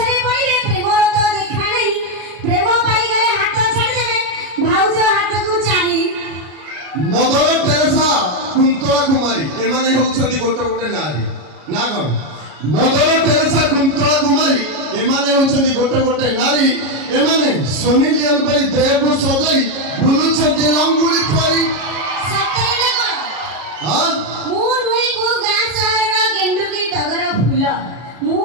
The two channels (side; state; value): left; late; 33 ms